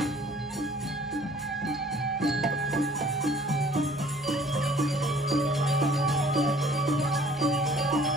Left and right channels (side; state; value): right; noise; hum, 25 dB below the sound